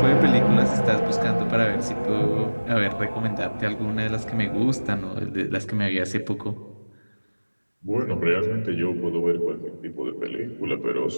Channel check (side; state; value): both; inverted; correlation -1.00